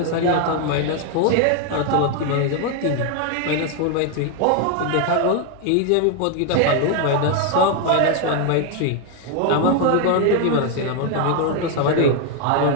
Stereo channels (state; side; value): different; both; correlation 0.01